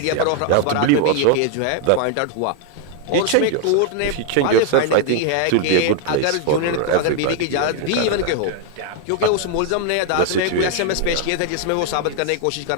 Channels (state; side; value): different; both; correlation 0.00